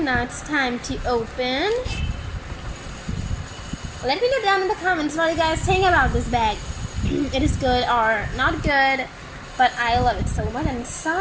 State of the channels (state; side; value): identical; both; correlation 1.00